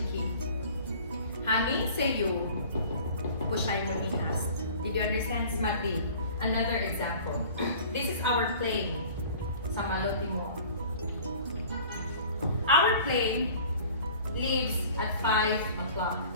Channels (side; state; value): both; inverted; correlation -0.46